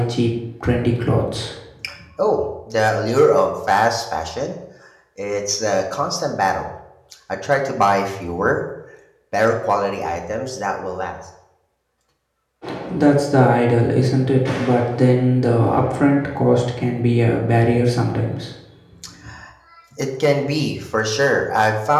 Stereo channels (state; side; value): identical; both; correlation 1.00